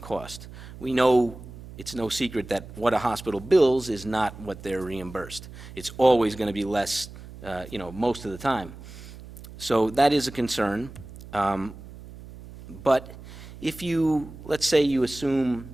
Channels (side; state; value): right; noise; hum, 15 dB below the sound